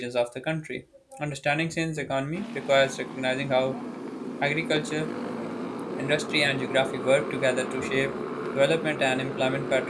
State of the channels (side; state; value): both; identical; correlation 1.00